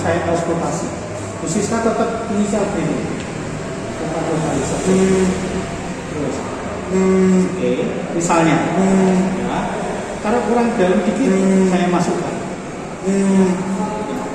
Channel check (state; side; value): identical; both; correlation 1.00